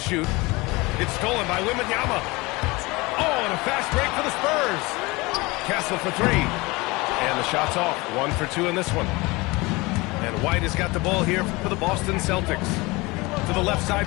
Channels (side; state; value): right; quieter; 23.5 dB